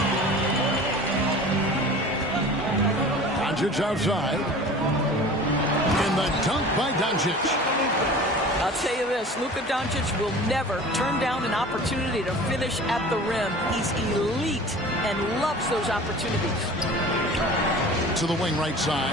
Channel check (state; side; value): normal; both; correlation 0.41